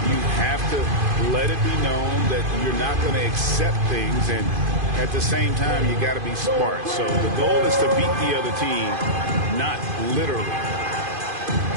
You have to let it be known that you're not going to accept things, and at the same time, you got to be smart. So the goal is to beat the other team, not literally.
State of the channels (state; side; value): late; left; 2.5 ms